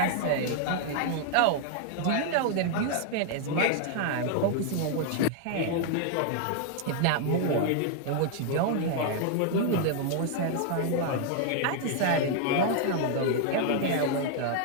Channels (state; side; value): different; both; correlation 0.00